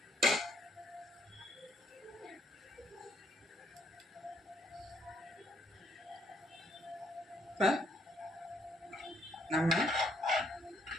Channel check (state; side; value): normal; both; correlation 0.70